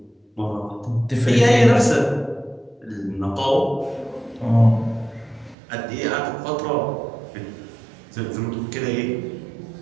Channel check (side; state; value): left; drops out; at 5.6 s